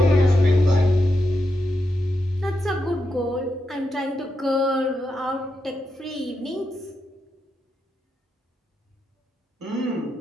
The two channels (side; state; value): both; normal; correlation 0.85